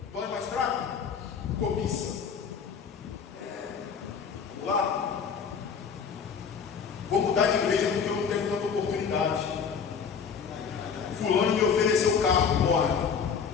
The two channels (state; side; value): quieter; right; 6.4 dB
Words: Dói mais fraco? Cobiça. Vamos lá? Vou mudar de igreja porque eu não tenho tanta oportunidade. Fulano me ofereceu carro, Moabe.